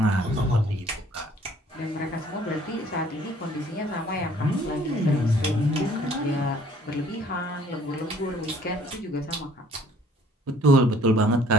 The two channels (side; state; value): both; normal; correlation 0.57